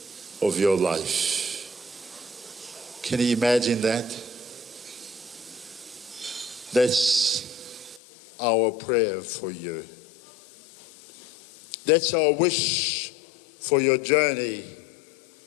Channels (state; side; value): drops out; right; at 8.0 s